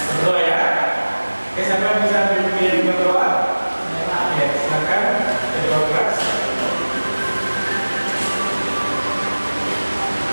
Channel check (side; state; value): both; inverted; correlation -1.00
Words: berdoa ya. Oke, siapa bisa pimpin berdoa? Ya, silakan berdoa keras.